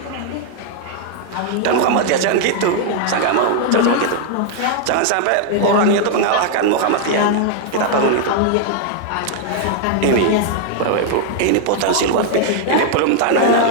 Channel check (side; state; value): both; different; correlation 0.00